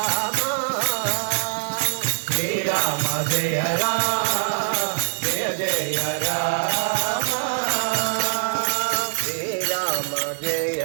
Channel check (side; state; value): left; silent; 63 dB below the other